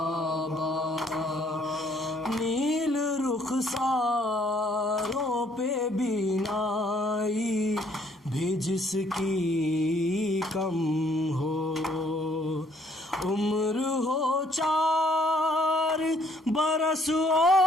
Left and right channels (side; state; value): both; normal; correlation 0.65